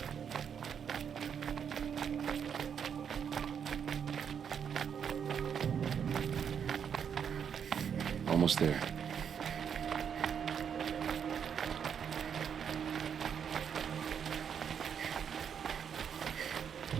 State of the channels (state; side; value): quieter; left; 7.7 dB